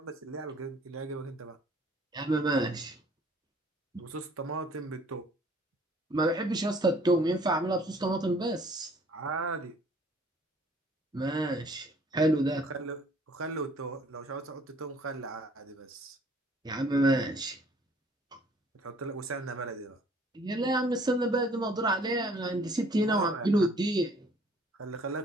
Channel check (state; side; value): normal; both; correlation 0.57